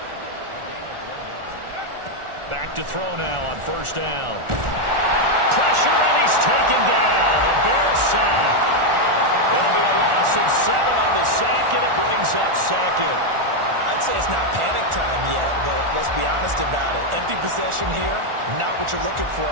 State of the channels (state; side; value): late; left; 1.4 ms